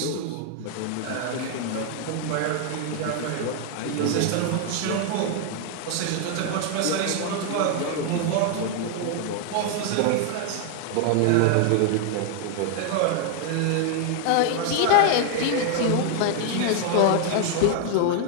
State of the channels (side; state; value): both; different; correlation 0.00